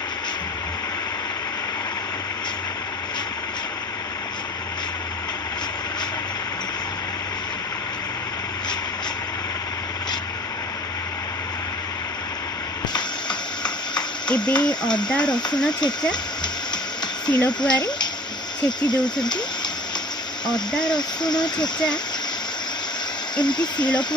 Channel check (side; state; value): both; normal; correlation 0.46